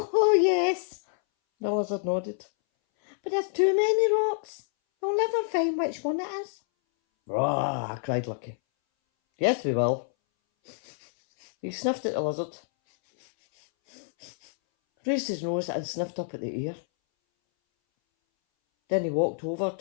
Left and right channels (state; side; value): silent; right; 60 dB below the other